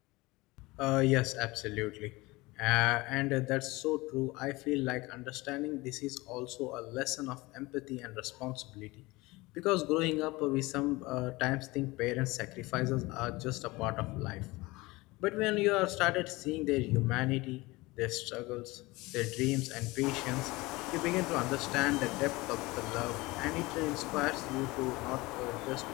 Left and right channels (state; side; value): quieter; right; 22.0 dB